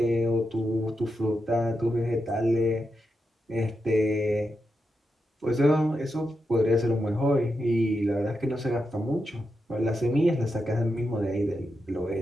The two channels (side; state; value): both; normal; correlation 0.87